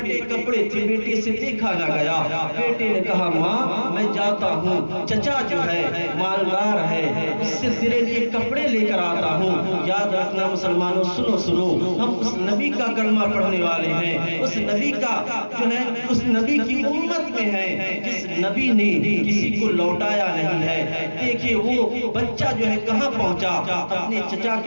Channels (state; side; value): inverted; both; correlation -1.00